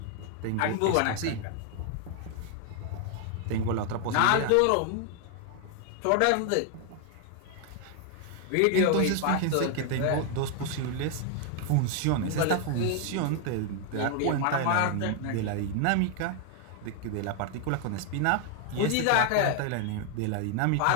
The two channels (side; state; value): both; different; correlation 0.00